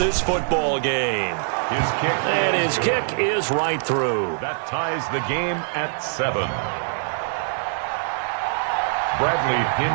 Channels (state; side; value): silent; left; 63 dB below the other